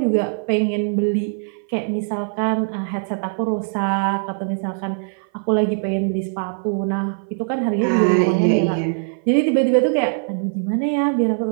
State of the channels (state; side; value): silent; left; 57 dB below the other